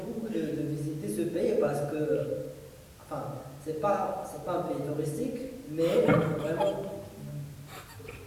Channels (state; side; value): identical; both; correlation 1.00